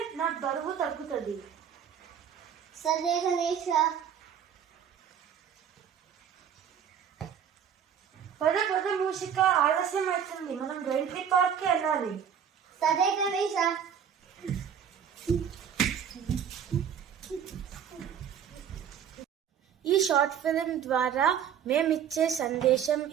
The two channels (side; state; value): left; quieter; 8.3 dB